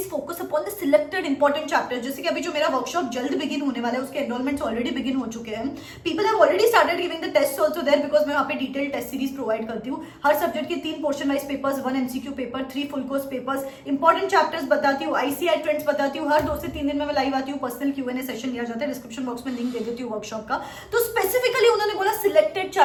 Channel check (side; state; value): both; identical; correlation 1.00